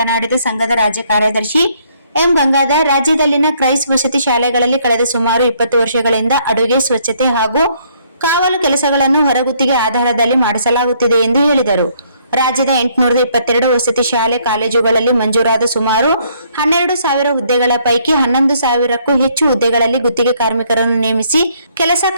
ಸಂಘದ ರಾಜ್ಯ ಕಾರ್ಯದರ್ಶಿ ಎಂ ಗಂಗಾಧರ್, ರಾಜ್ಯದಲ್ಲಿನ ಕ್ರೈಸ್ ವಸತಿ ಶಾಲೆಗಳಲ್ಲಿ ಕಳೆದ ಸುಮಾರು 20 ವರ್ಷಗಳಿಂದ ಅಡುಗೆ, ಸ್ವಚ್ಛತೆ ಹಾಗೂ ಕಾವಲು ಕೆಲಸಗಳನ್ನು ಹೊರಗುತ್ತಿಗೆ ಆಧಾರದಲ್ಲಿ ಮಾಡಿಸಲಾಗುತ್ತಿದೆ ಎಂದು ಹೇಳಿದರು. ರಾಜ್ಯದ 822 ವಸತಿ ಶಾಲೆ ಕಾಲೇಜುಗಳಲ್ಲಿ ಮಂಜೂರಾದ ಸುಮಾರು 12,000 ಹುದ್ದೆಗಳ ಪೈಕಿ 11,000ಕ್ಕೂ ಹೆಚ್ಚು ಹುದ್ದೆಗಳಲ್ಲಿ ಗುತ್ತಿಗೆ ಕಾರ್ಮಿಕರನ್ನು ನೇಮಿಸಿ ಕೆಲಸ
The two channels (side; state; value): both; inverted; correlation -0.67